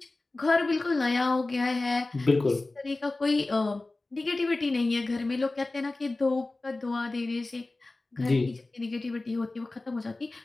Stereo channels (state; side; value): quieter; right; 3.1 dB